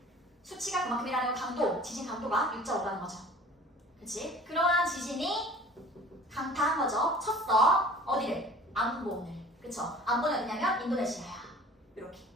수치가 그만큼이라는 강도, 지진 강도가 6.5라는 거죠. 그치? 그러한 지진이 강타한 거죠. 쳤어. 어디를? 안본을. 그쵸? 안본은 어디냐면 인도네시아야. 이렇게.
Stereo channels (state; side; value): normal; both; correlation 0.46